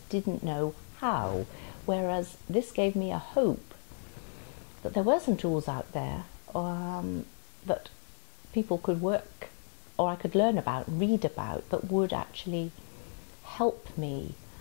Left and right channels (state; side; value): silent; right; digital silence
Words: didn't know how. Whereas this gave me a hope that there were some tools out there that people could work, or I could learn about, read about, that would actually help me.